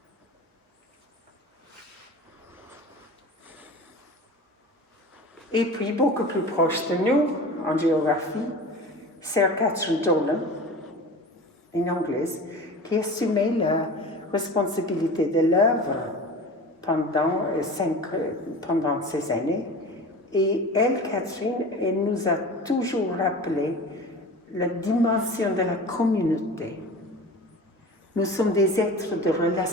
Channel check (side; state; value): both; normal; correlation 0.35